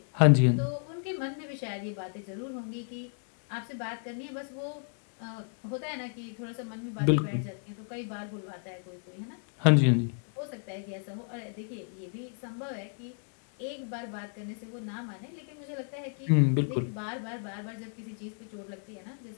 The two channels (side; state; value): right; silent; 56 dB below the other